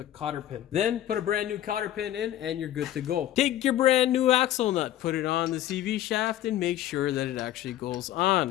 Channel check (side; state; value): right; quieter; 12.8 dB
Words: cotter pin. Then put a brand new cotter pin in and you're good to go. Take your brand new axle nut, put it on the CV shaft, and make sure that it actually goes